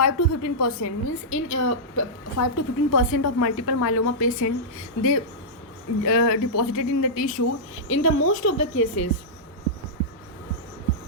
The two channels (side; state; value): both; normal; correlation -0.12